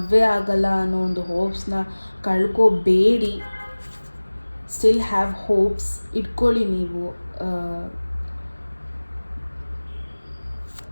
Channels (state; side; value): inverted; both; correlation -1.00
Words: ಆಗಲ್ಲ ಅನ್ನೋ ಒಂದು ಹೋಪ್ಸ್ನ ಕಳ್ಕೋಬೇಡಿ. ಸ್ಟಿಲ್ ಹ್ಯಾವ್ ಹೋಪ್ಸ್ ಇಟ್ಕೊಳ್ಳಿ ನೀವು.